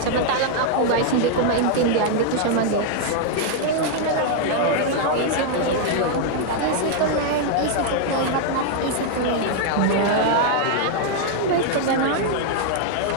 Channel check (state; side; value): different; both; correlation 0.00